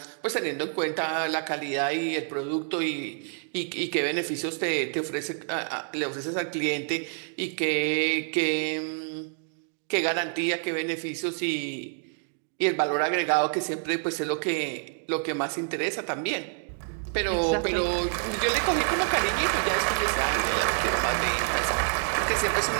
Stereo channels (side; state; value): left; silent; digital silence